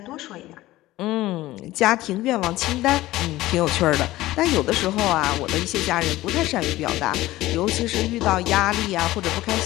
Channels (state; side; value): quieter; right; 16.9 dB